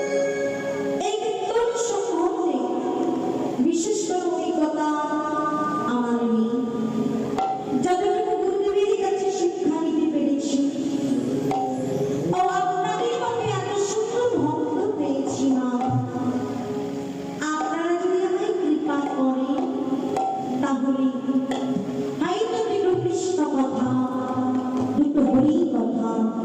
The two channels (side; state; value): both; identical; correlation 1.00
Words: এই কীর্তন সম্বন্ধে বিশেষ কোনো অভিজ্ঞতা আমার নেই। যতটুকু গুরুদেবের কাছে শিক্ষা নিতে পেরেছি ও আপনাদের মধ্যে এত সুন্দর ভক্ত পেয়েছি মা, আপনারা যদি আমায় কৃপা করেন তাহলে হয়তো দুটো কৃষ্ণ কথা, দুটো হরি কথা